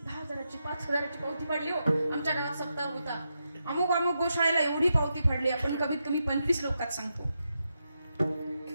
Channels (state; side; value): inverted; both; correlation -0.85